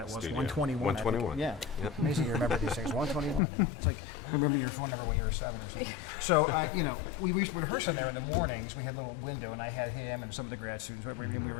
was, Studio. 121. I think. 121. Yeah. Yep. Amazing you remember these things. 121. It's like remembering your phone number when you were 7 or something. So, we used to rehearse in there in the mornings. We had a little window, and I had him and some of the grad students, and we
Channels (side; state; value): right; drops out; at 3.4 s